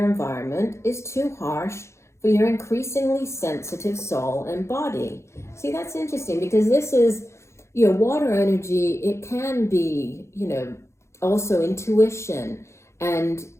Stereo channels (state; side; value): late; right; 0.13 ms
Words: environment is too harsh for your increasingly sensitive soul and body. See, that's interesting, because this is, water energy. It can be, also intuition, and